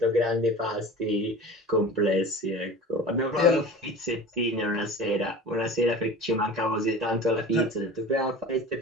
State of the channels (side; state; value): both; normal; correlation 0.37